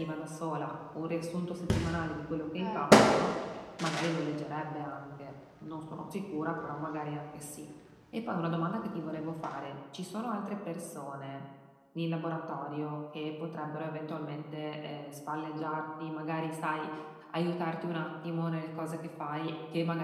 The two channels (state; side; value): identical; both; correlation 1.00